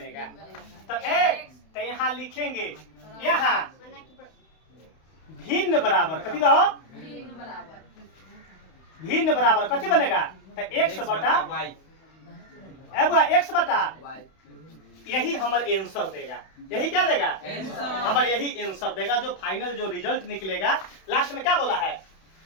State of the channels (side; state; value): right; late; 31 ms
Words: तो एक तो यहाँ लिखेंगे यहाँ भिन्न बराबर कथी कहो भिन्न बराबर कथी बनेगा तो x बटा x बटा यही हमारे आंसर देगा। यही क्या देगा हमारे यही आंसर देगा जो फाइनल जो रिजल्ट निकलेगा लास्ट में क्या बोला है